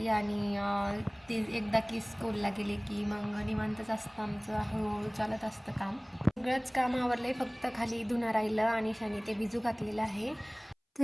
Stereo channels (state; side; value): identical; both; correlation 1.00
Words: आणि ते एकदा की स्कूलला गेले की मग निवांतच असतं आमचं, हळूहळू चालत असतं काम. सगळंच काम आवरलं, फक्त खाली धुणं राहिलं आणि शाने ते भिजू घातलेलं आहे.